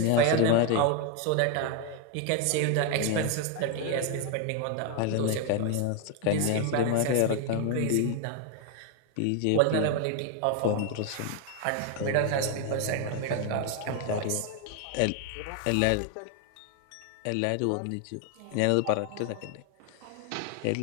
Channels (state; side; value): different; both; correlation 0.00